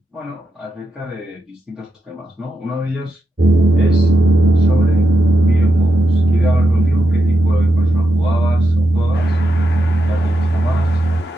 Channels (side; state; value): both; normal; correlation 0.86